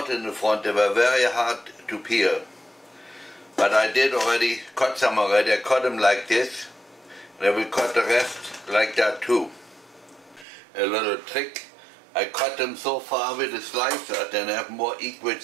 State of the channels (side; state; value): left; drops out; at 10.5 s